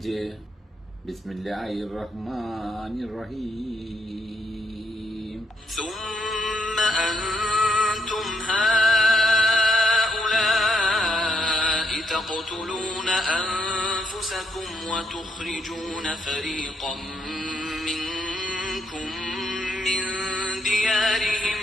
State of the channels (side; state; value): both; normal; correlation 0.76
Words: ബിസ്മില്ലാഹിർ റഹ്മാനിർ റഹീം. ثم أنتم هؤلاء تقتلون أنفسكم وتخرجون فريقا منكم من ديارهم